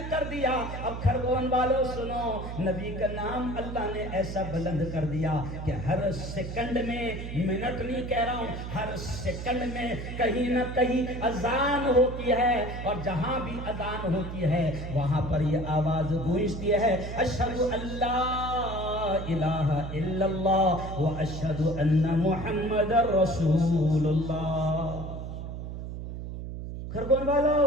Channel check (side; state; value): right; noise; hum, 7 dB below the sound